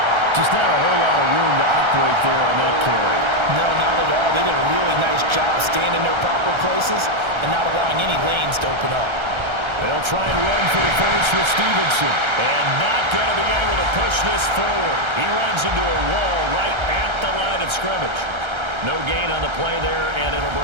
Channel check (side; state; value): left; late; 1.3 ms